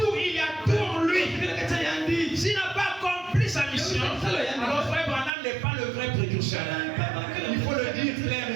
il y a tout en lui. S'il n'a pas accompli sa mission, alors Frère Branham n'est pas le vrai précurseur. Il faut le dire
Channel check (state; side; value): drops out; left; at 5.3 s